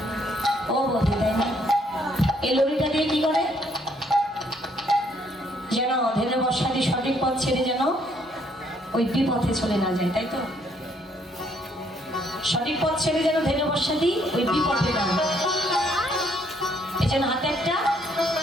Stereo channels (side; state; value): both; normal; correlation 0.68